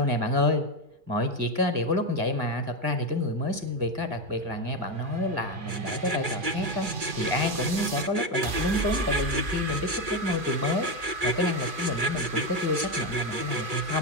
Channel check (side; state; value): left; late; 2.4 ms